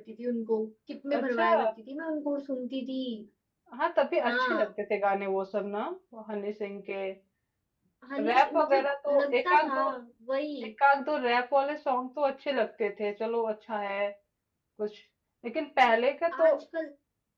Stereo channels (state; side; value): identical; both; correlation 1.00